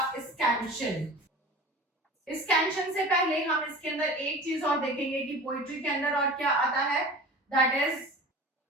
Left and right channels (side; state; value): both; normal; correlation 0.38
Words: स्कैंशन. स्कैंशन से पहले हम इसके अंदर एक चीज और देखेंगे कि पोएट्री के अंदर और क्या आता है. That is